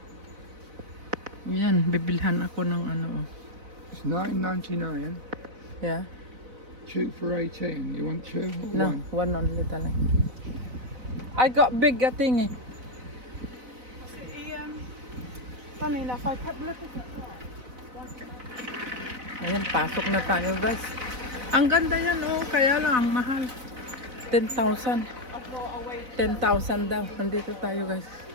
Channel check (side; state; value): left; late; 4.0 ms